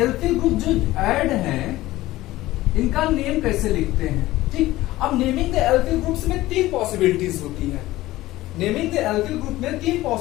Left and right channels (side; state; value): right; quieter; 17.0 dB